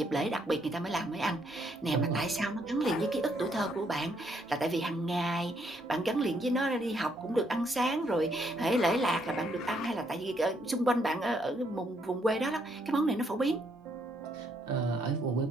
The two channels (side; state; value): both; normal; correlation 0.72